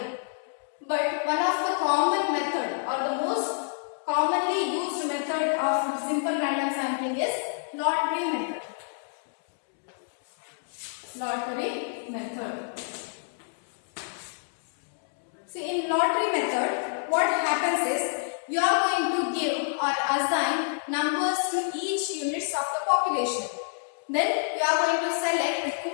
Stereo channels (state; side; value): silent; right; digital silence